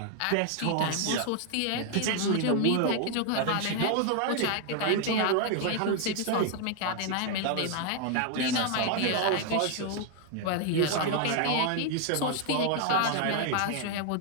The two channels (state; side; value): different; both; correlation 0.00